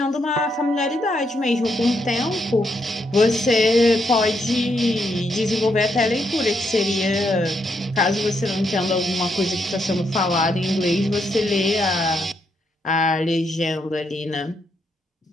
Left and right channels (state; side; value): normal; both; correlation 0.78